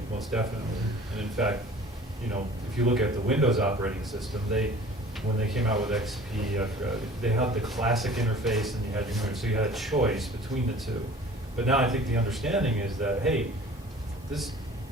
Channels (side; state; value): both; normal; correlation 0.46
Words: most definitely. And in fact, you know, if you look at the Windows operating system, when they came out with XP, they had the classic interface and you had your, so you had a choice between the two. But now I think the understanding is that, hey,